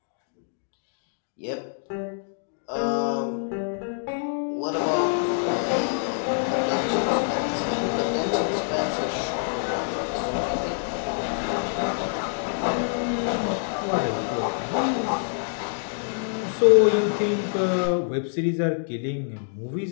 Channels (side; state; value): right; silent; digital silence